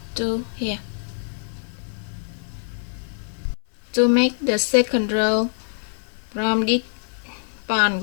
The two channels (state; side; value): silent; right; 62 dB below the other